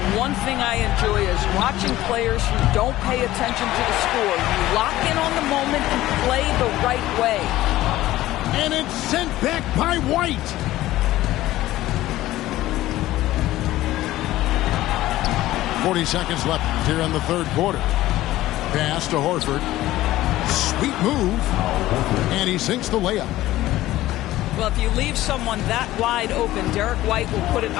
One thing I enjoy is watching players who don't pay attention to the score. You lock in on the moment and play the right way. And it's sent back by White. .40 seconds left here in the third quarter. Pass to Horford. Sweet move. And he sinks the layup. Well, if you leave someone that wide open, Derek White will put it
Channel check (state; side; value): quieter; right; 15.7 dB